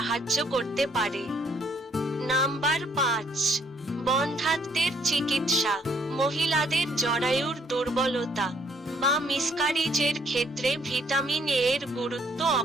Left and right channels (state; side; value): normal; both; correlation 0.66